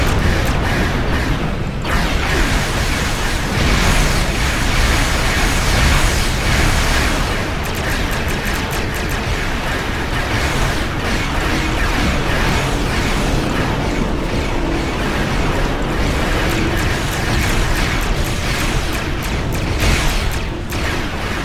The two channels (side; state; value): both; identical; correlation 1.00